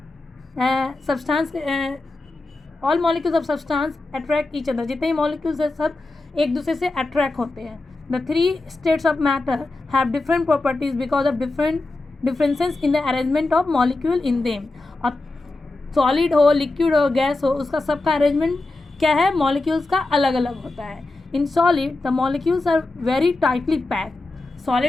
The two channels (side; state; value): right; quieter; 3.1 dB